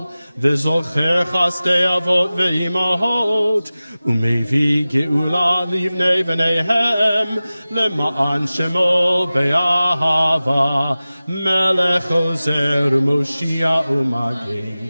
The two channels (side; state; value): both; inverted; correlation -0.97